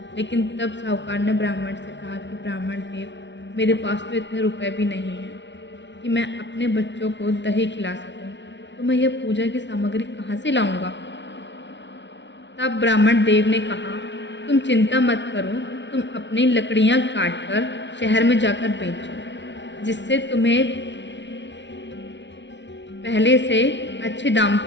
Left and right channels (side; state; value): right; late; 0.52 ms